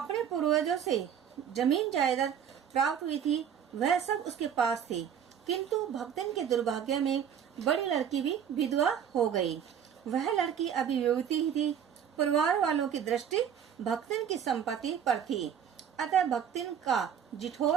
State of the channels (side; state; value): left; quieter; 8.5 dB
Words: पूर्वजों से जमीन जायदाद प्राप्त हुई थी, वह सब उसके पास थी, किंतु भक्तिन के दुर्भाग्य में बड़ी लड़की भी विधवा हो गई। वह लड़की अभी युवती ही थी। परिवार वालों की दृष्टि भक्तिन की संपत्ति पर थी, अतः भक्तिन का